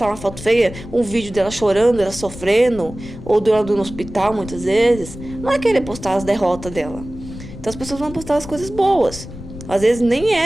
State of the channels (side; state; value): left; noise; rumble, 13 dB below the sound